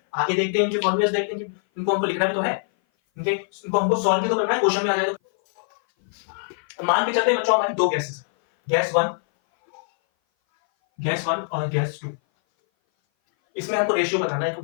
आगे देखते हैं इनके फॉर्मूलेस, देखते हैं कि इनको हमको लिखना भी तो है, इनको हमको सॉल्व भी तो करना है, क्वेश्चन में आ जाए तो। मान के चलते हैं बच्चों हमारी दो गैसेस है, गैस वन और गैस टू। इसमें हमको रेशियो बताना है,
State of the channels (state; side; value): silent; right; 58 dB below the other